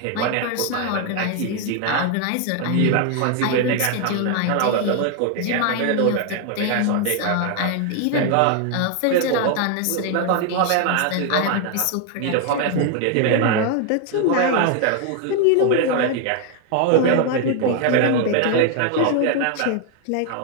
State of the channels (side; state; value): both; different; correlation 0.01